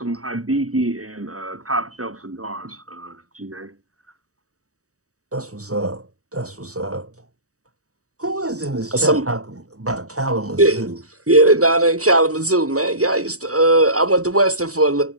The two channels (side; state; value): left; late; 0.66 ms